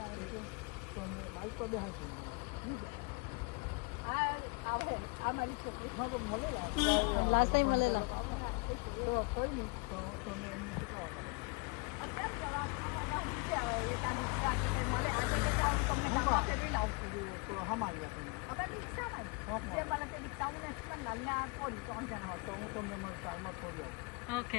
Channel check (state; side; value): quieter; right; 30.4 dB